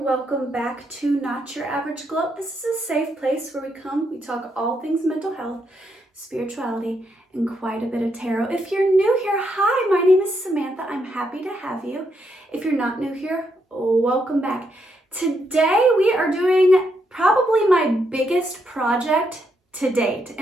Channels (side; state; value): both; normal; correlation 0.78